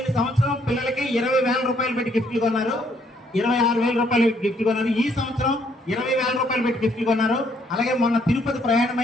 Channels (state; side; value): normal; both; correlation 0.69